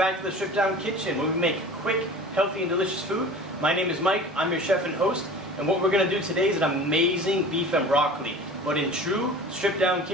to the Stripped Down Kitchen where we make quick, healthy and delicious food. My name is Mike, I'm your chef and host, and what we're going to do today is an amazing beef and broccoli. But in true Stripped Down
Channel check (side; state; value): both; normal; correlation 0.40